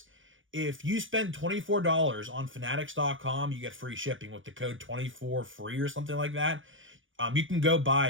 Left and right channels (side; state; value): left; late; 0.57 ms